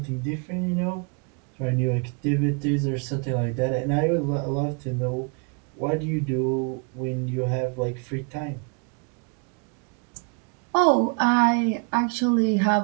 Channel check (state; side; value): quieter; left; 37.2 dB